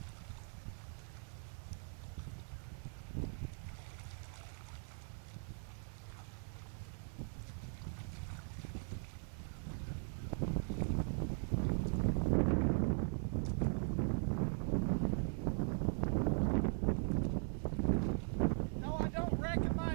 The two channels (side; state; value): left; silent; 51 dB below the other